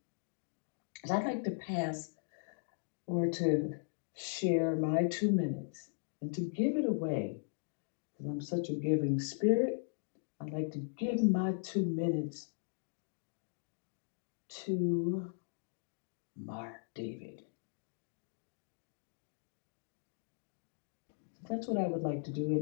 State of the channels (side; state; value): right; silent; digital silence